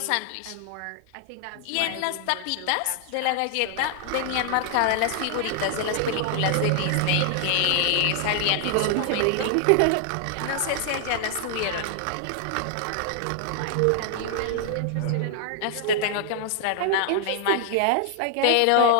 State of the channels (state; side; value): different; both; correlation -0.01